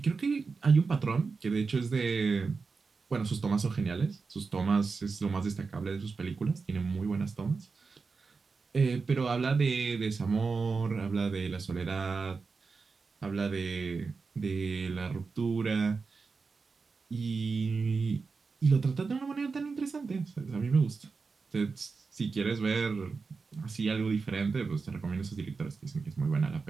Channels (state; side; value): quieter; left; 4.6 dB